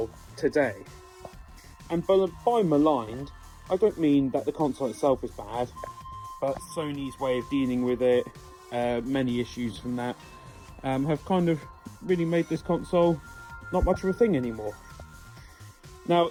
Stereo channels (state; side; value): identical; both; correlation 1.00